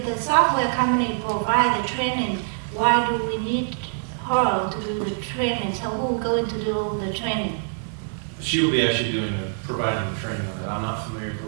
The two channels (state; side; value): silent; left; 59 dB below the other